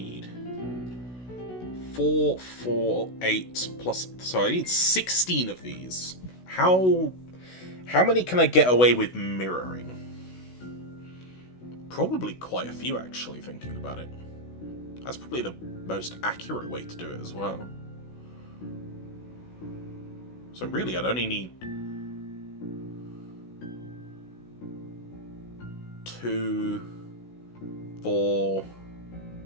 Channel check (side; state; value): right; late; 16 ms